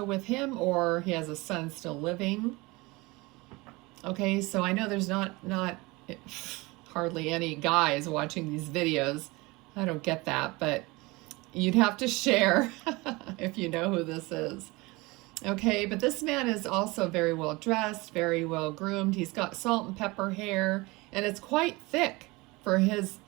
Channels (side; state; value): left; quieter; 23.4 dB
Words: with him, or he has a son still living. Okay, so I know there's not hardly any guys watching these videos. I don't get that, but you'd have to share if you know who this is. Okay, but this man is also very well dressed, very well groomed. He's got salt and pepper hair, and it's quite thick for his